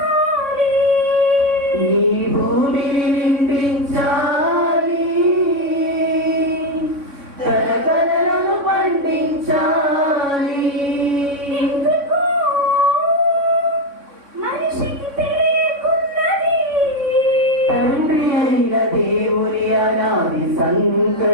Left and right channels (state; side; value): late; left; 3.6 ms